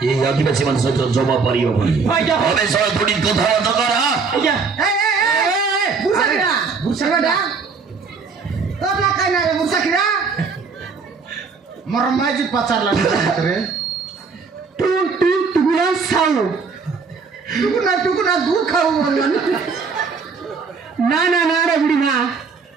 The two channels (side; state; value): left; quieter; 5.0 dB